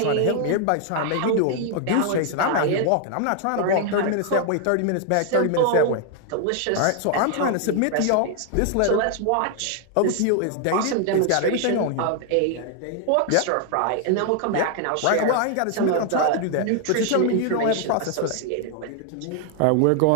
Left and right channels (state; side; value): different; both; correlation 0.00